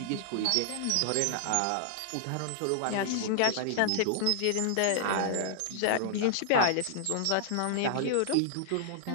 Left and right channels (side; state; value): both; different; correlation -0.01